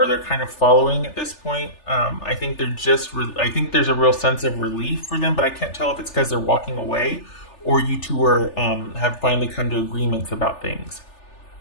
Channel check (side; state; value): right; late; 3.4 ms